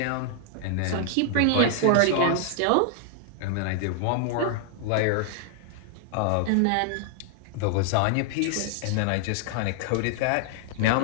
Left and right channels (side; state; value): both; different; correlation 0.00